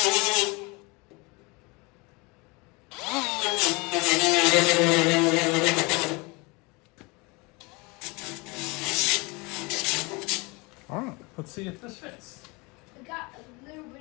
All right, let's see if this fits. I got a little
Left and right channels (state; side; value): quieter; right; 26.9 dB